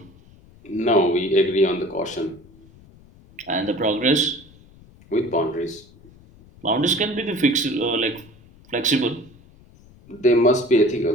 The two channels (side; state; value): left; noise; rumble, 25 dB below the sound